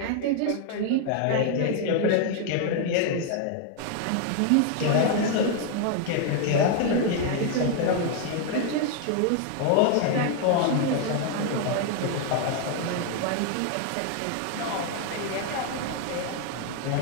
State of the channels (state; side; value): different; both; correlation 0.00